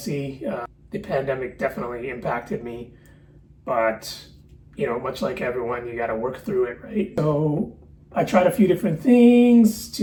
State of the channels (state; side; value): identical; both; correlation 1.00